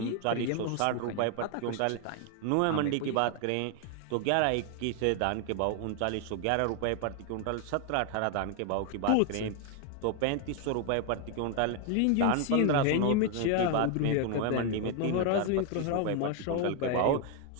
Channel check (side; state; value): both; different; correlation 0.00